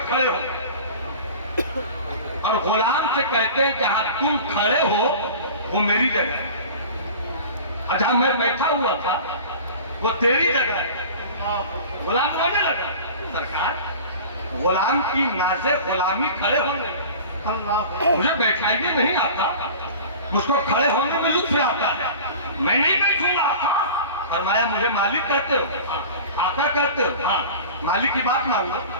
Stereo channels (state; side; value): inverted; both; correlation -0.38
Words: खड़े हो और गुलाम से कहते हैं जहां तुम खड़े हो वो मेरी जगह है, जहां मैं बैठा हुआ था वो तेरी जगह है। गुलाम बोलने लगा, सरकार गुलाम की नाज़े गुलामी खड़े होने, मुझे बैठाइए नहीं आता, मुझको खड़े होने में लुत्फ आता है, मैं नहीं बैठूंगा आका। फरमाया मुझे मालिक कहते हो? आका कहते हो? हाँ। मालिक की बात मान लो,